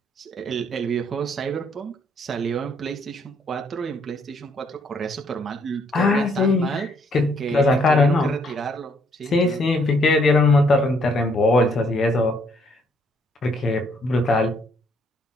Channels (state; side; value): normal; both; correlation 0.68